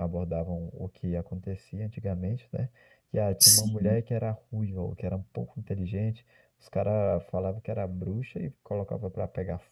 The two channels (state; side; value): identical; both; correlation 1.00